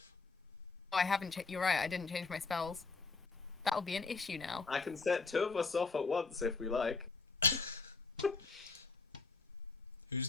Oh, I haven't you're right, I didn't change my spells. That'll be an issue now. I can set 2 of us off at once if we like. Who's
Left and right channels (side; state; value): right; quieter; 4.2 dB